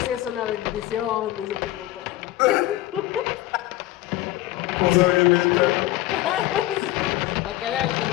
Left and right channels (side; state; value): right; quieter; 16.0 dB